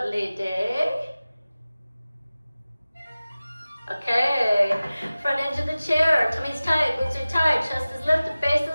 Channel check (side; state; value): both; inverted; correlation -0.97